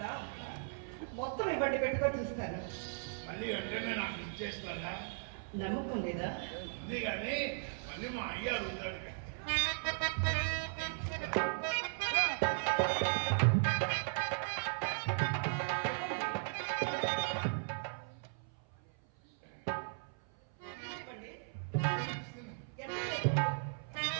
మొత్తం ఇవ్వండి, పెట్టుకొని చూస్తాను. మళ్ళీ వెంటనే నాకు ఇచ్చేస్తారా? నమ్మకం లేదా? ఉంది కానీ మళ్ళీ మా అయ్య అడుగుతాడు.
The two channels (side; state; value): left; silent; 53 dB below the other